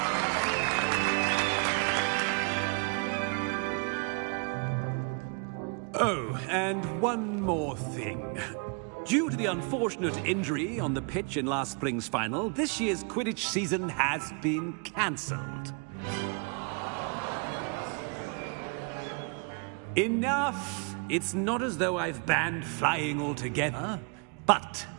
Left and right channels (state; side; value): quieter; left; 36.4 dB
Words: Oh, and one more thing. Due to the unfortunate injury on the pitch in last spring's final, this year's Quidditch season has been cancelled. Enough! It's not as though I've banned flying altogether. But